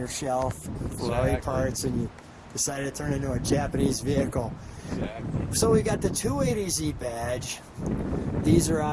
shelf, Ferrari Exactly. parts, and you decided to turn it into a Japanese vehicle. Exactly. So we got the 280Z badge. These are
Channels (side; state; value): both; identical; correlation 1.00